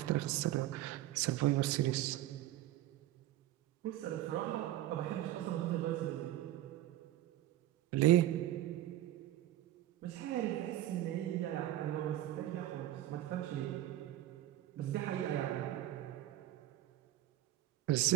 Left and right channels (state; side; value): quieter; left; 14.1 dB